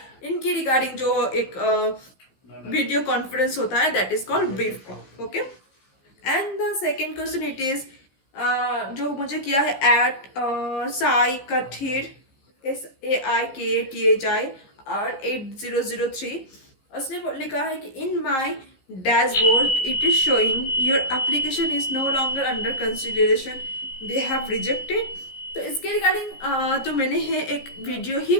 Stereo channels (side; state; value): right; late; 15 ms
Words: इनकी रिगार्डिंग जो एक वीडियो कॉन्फ्रेंस होता है, that is called brief call. Okay. And the second question it is जो मुझे किया है एट साई कठीर, SAIKTHIR 8003. उसने लिखा है कि in my dashboard it is showing your application is no longer under consideration, they have rejected. तो इसके रिगार्डिंग जो मैंने है एक वीडियो ही